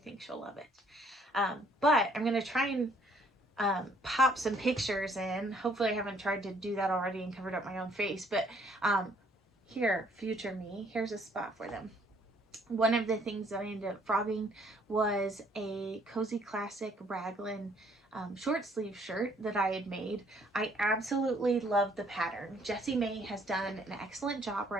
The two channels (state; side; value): normal; both; correlation 0.63